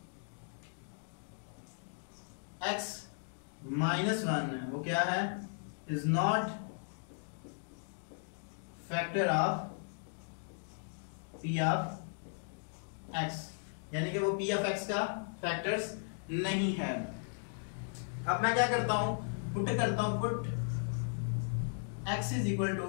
x -1 है वो क्या है, is not factor of p of x, यानी कि वो p ऑफ x का फैक्टर्स नहीं है। अब मैं क्या करता हूं, पुट करता हूं, put x is equal to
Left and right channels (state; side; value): silent; right; digital silence